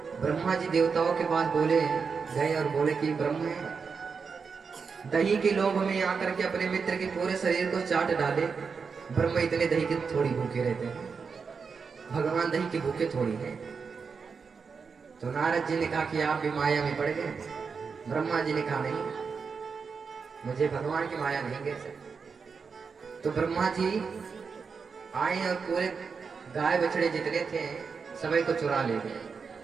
ब्रह्मा जी देवताओं के पास बोले गए और बोले कि ब्रह्म है, दही के लोभ में आकर के अपने मित्र के पूरे शरीर को चाट डाले। ब्रह्म इतने दही के थोड़ी भूखे रहते हैं, भगवान दही के भूखे थोड़ी है। तो नारद जी ने कहा कि आप भी माया में पड़ गए। ब्रह्मा जी ने कहा नहीं, मुझे भगवान की माया नहीं गिर सकती। तो ब्रह्मा जी आए और पूरे गाय बछड़े जितने थे सभी को चुरा ले गए।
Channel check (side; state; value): left; quieter; 5.5 dB